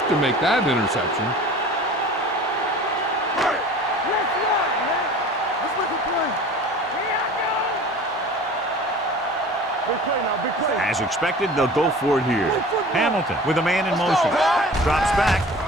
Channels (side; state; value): both; normal; correlation 0.42